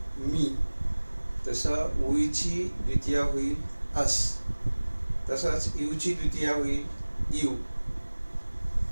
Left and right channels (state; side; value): inverted; both; correlation -1.00